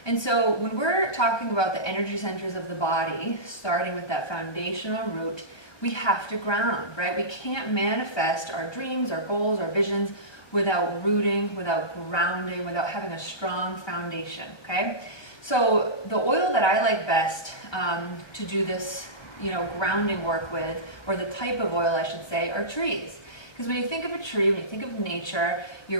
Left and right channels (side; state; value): right; late; 1.2 ms